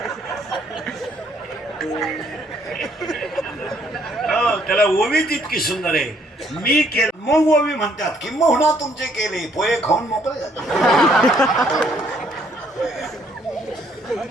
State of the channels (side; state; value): both; normal; correlation 0.67